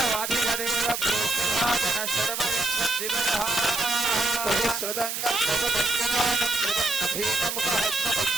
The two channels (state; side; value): noise; right; hiss, 3 dB below the sound